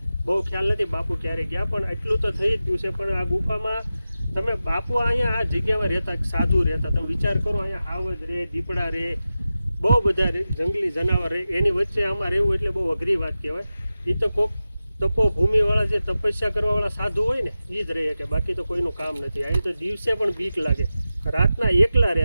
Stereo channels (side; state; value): both; inverted; correlation -0.93